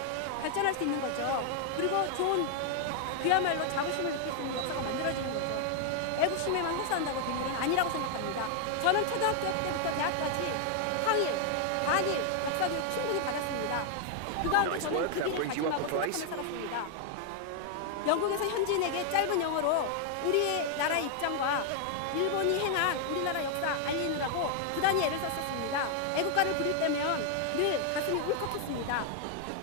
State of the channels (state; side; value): different; both; correlation 0.00